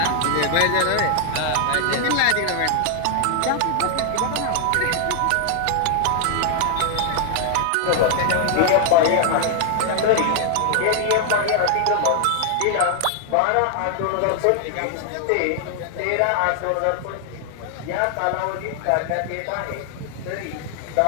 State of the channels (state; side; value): different; both; correlation 0.00